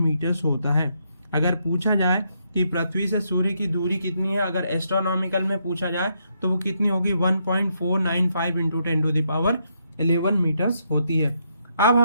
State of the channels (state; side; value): inverted; both; correlation -0.77